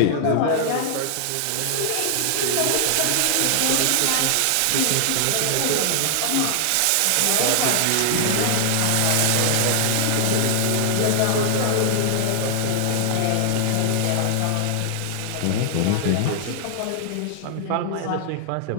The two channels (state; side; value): different; both; correlation 0.00